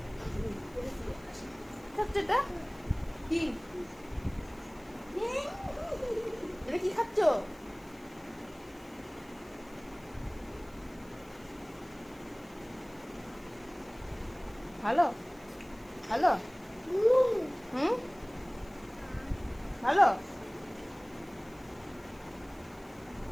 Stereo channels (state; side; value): noise; left; hiss, 27 dB below the sound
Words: খাচ্ছে এটা কি? এটা কি খাচ্ছ? ভালো ভালো, হুম ভালো।